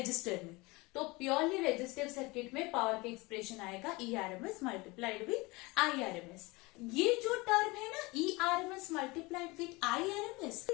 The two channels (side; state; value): right; quieter; 24.0 dB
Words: में. तो प्योरली रेजिस्टिव सर्किट में पावर का एक्सप्रेशन आएगा ERMS मल्टीप्लाइड विथ IRMS. ये जो टर्म है ना ERMS multiplied with IRMS,